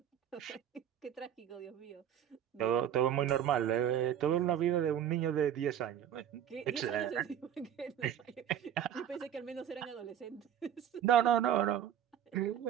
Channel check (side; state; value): left; quieter; 9.9 dB